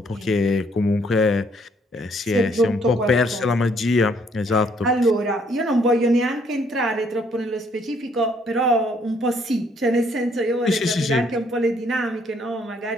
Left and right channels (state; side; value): normal; both; correlation 0.67